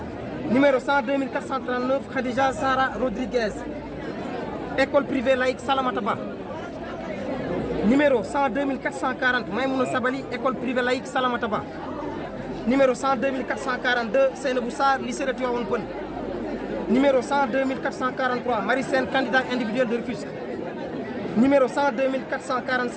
Numéro 102 439, Khadija Sara Rodriguez, école privée laïque Salamata Ba. Numéro 102 440, Maïmouna Sabali, école privée laïque Salamata Ba. Numéro 102 442, Seynabou Sarr, lycée de Tivaouane Peulh. Numéro 102 443, Marie Sène, candidat individuel de Rufisque. Numéro 102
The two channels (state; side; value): identical; both; correlation 1.00